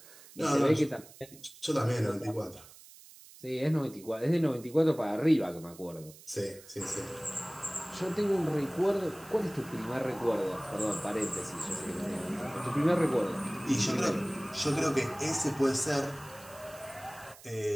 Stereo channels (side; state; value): right; noise; hiss, 20 dB below the sound